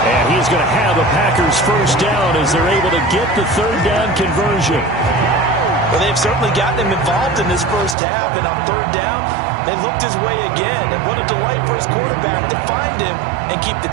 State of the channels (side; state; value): left; drops out; at 8.0 s